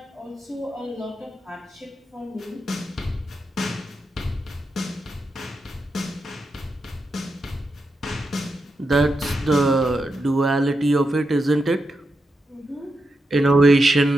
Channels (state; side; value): normal; both; correlation 0.87